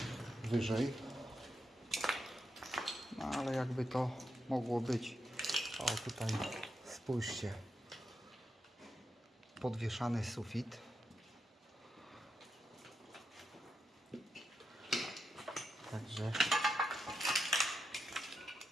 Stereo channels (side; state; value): both; normal; correlation 0.85